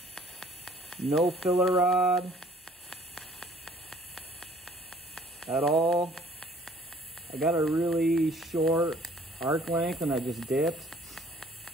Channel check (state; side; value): normal; both; correlation 0.56